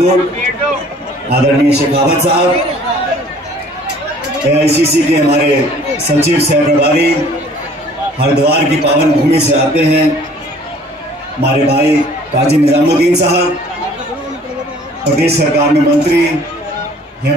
आदरणीय शेखावत साहब, AICC के हमारे सचिव सह प्रभारी, हरिद्वार की पावन भूमि से आते हैं हमारे भाई काजी निजामुद्दीन साहब, प्रदेश सरकार में मंत्री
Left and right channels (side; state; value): both; normal; correlation 0.54